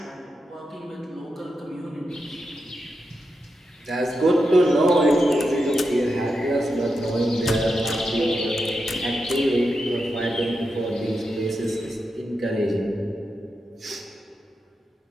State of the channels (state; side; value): normal; both; correlation 0.87